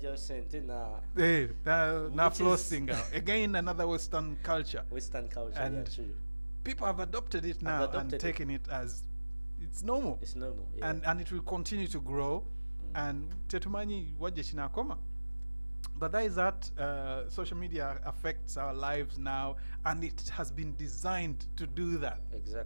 sente na. Na flossing out. Again, another Western culture. Western culture, and yeah, true. People have adopted it now and taken it as it's normal. It's normal, yeah. And it will continue to grow. And tetumanyi waje chinakoma. But that is that social media affects our lives now, and it has been designed to do that.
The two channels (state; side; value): inverted; both; correlation -1.00